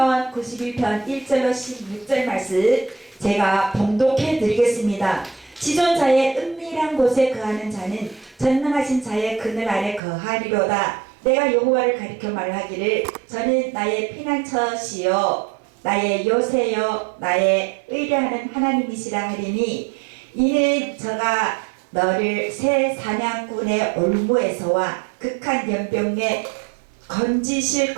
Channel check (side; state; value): left; drops out; at 10.0 s